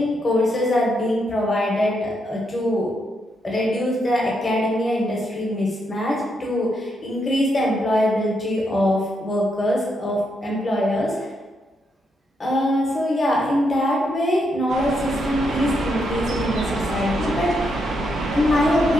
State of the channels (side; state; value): both; normal; correlation 0.79